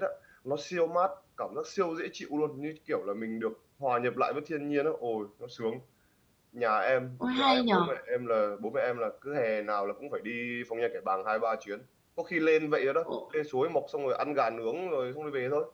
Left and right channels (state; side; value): identical; both; correlation 1.00